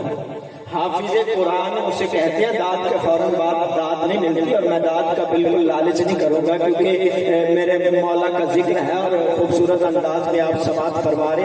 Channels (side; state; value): both; identical; correlation 1.00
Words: حافظ قرآن اسے کہتے ہیں داد کے فوراً بعد داد نہیں ملتی، اور میں داد کا بالکل لالچ نہیں کروں گا کیونکہ میرے مولا کا ذکر ہے اور خوبصورت انداز میں آپ سماعت فرما رہے